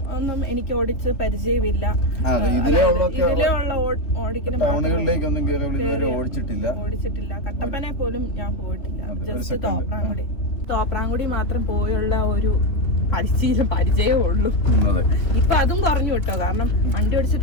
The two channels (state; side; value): late; right; 3.3 ms